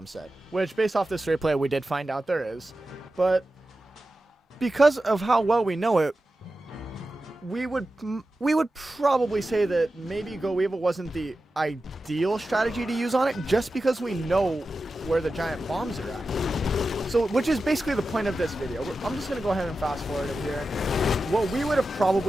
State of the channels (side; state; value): both; normal; correlation 0.93